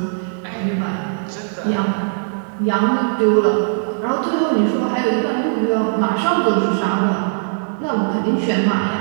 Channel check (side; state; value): left; silent; 66 dB below the other